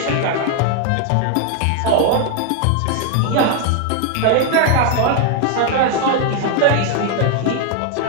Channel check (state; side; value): different; both; correlation 0.00